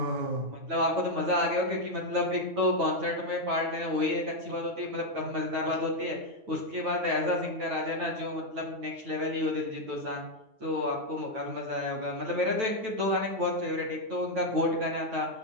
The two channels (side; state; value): left; late; 9.1 ms